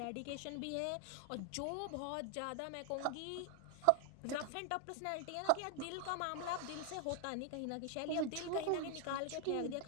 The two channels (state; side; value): different; both; correlation 0.00